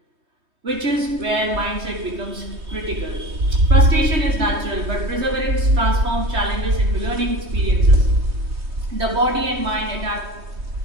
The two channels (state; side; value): late; left; 3.3 ms